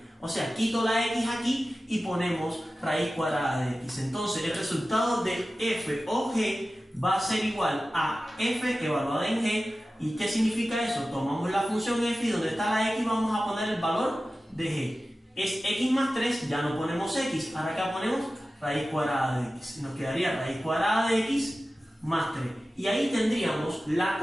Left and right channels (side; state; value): both; normal; correlation 0.95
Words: O sea, quito la x aquí y ponemos raíz cuadrada de x. Entonces, el resultado de f o g va a ser igual a f evaluada en g. ¿Y qué significa eso? Tomamos la función f y donde está la x vamos a poner el valor de g. Es x más 3, ya no ponemos x. Ahora acá ponemos raíz cuadrada de x. Nos quedaría raíz cuadrada de x más 3. Y ahí tendríamos la